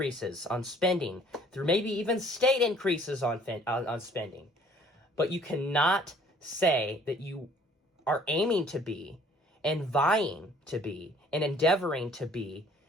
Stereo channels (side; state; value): both; normal; correlation 0.56